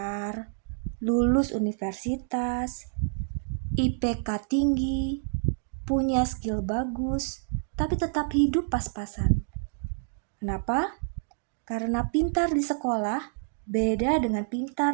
lulus universitas, IPK tinggi, punya skill bagus, tapi tetap hidup pas-pasan. Kenapa? Karena pintar di sekolah beda dengan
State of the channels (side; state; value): left; silent; digital silence